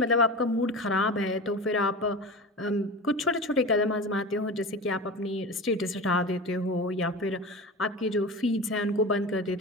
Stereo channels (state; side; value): normal; both; correlation 0.30